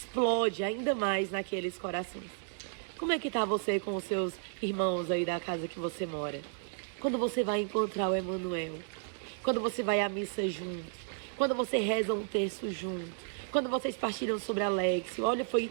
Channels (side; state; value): left; silent; digital silence